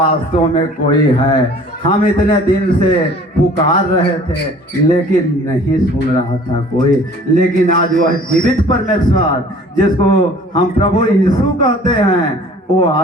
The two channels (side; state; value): both; normal; correlation 0.50